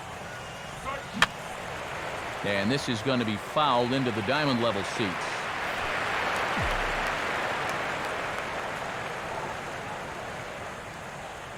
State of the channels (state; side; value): identical; both; correlation 1.00